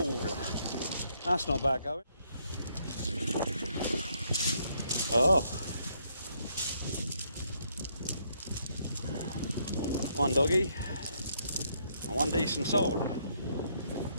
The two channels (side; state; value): both; inverted; correlation -0.72